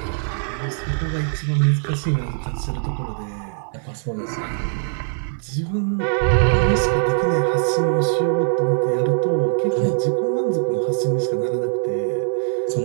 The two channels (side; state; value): left; silent; digital silence